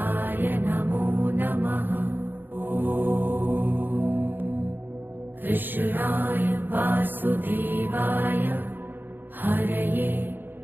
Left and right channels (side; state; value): left; late; 0.093 ms